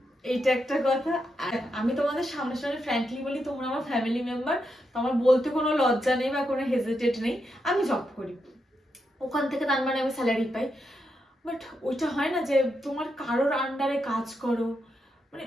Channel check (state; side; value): normal; both; correlation 0.83